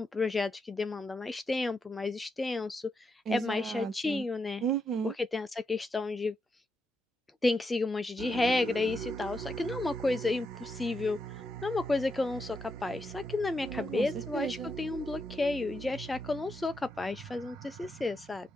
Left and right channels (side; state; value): both; normal; correlation 0.83